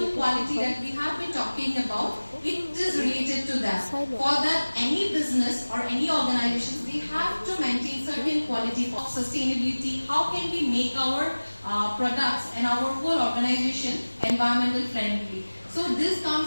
quality that we have been talking about, it is related to that. For that, any business or any organization, they have to maintain certain quality of sustainability. How can we make our products and our whole organization environmental friendly? So this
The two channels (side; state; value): both; inverted; correlation -1.00